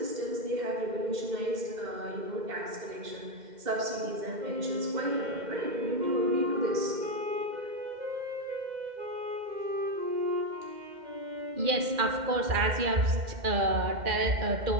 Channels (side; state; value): left; late; 2.1 ms